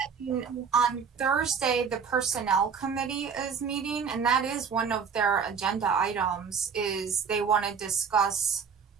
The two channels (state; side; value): quieter; left; 6.4 dB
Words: on Thursday, the personnel committee is meeting, and that is one of their agenda items, is they want to discuss